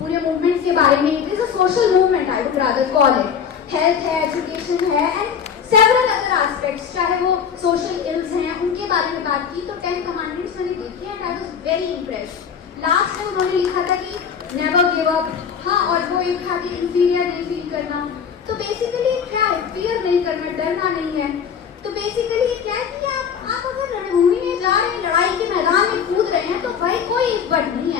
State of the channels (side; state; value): right; quieter; 7.3 dB